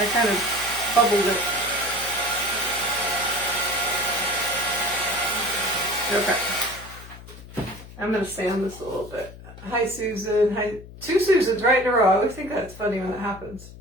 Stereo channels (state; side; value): noise; left; hum, 17 dB below the sound